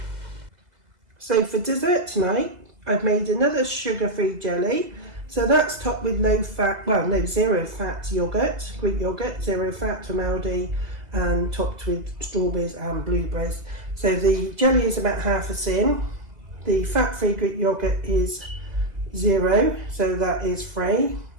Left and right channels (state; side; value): late; left; 1.8 ms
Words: So for dessert tonight, I've made another sugar-free jelly. So that's topped with zero fat yogurt, Greek yogurt, 0 fat from Aldi, and topped with strawberries and blueberries. So the jelly is about half a tin. The fat-free Greek yogurt is 0, so that is free,